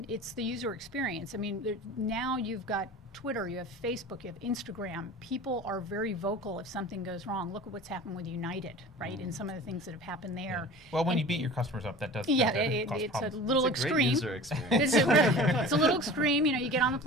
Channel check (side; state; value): both; normal; correlation 0.38